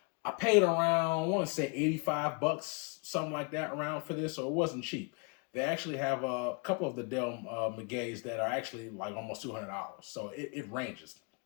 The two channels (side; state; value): right; quieter; 34.9 dB